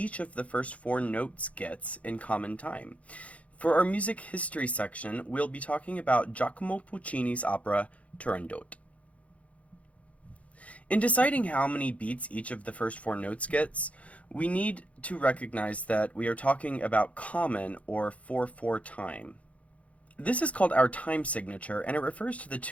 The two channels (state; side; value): late; right; 0.065 ms